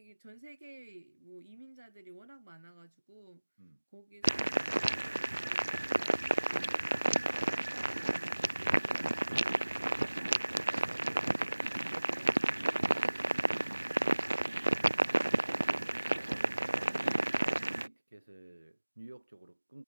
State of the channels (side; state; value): both; inverted; correlation -1.00